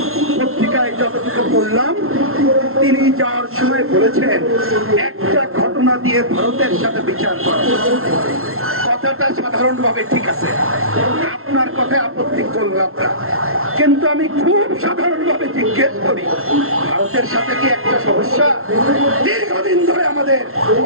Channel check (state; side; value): late; left; 0.62 ms